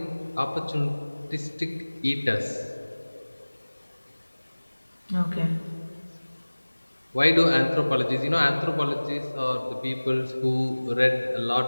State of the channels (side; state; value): both; inverted; correlation -1.00